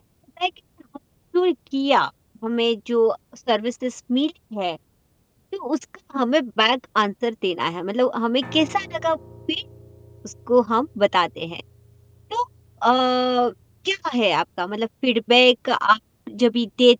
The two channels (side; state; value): both; identical; correlation 1.00